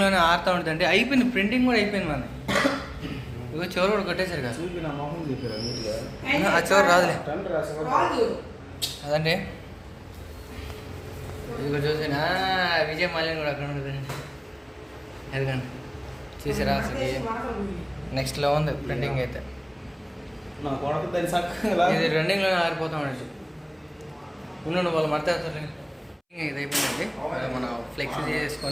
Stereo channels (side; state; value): both; identical; correlation 1.00